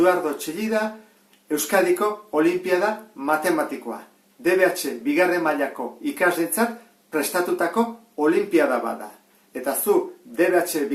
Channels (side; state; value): both; identical; correlation 1.00